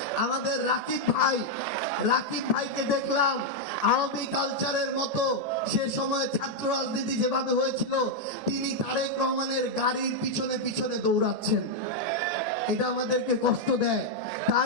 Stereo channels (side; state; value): left; late; 1.8 ms